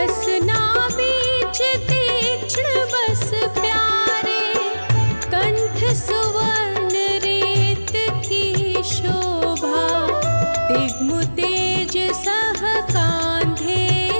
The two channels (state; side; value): inverted; both; correlation -1.00